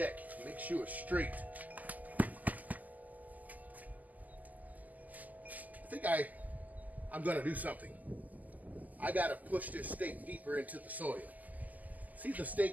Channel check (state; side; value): late; left; 0.080 ms